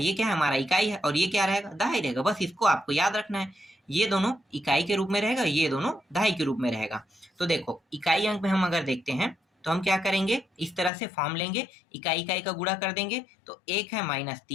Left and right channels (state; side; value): drops out; right; at 10.9 s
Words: ये क्या है, हमारा इकाई है, और ये क्या रहेगा, दहाई रहेगा। बस इसको आपको याद रखना है, ये दोनों इकाई के रूप में रहेगा, ये दोनों दहाई के रूप में रहेगा। तो देखो इकाई अंक में हम अगर देखते हैं तो हम क्या करेंगे, इस तरह से फॉर्म लेंगे, इकाई इकाई का गुणा कर देंगे। तो एक है माइनस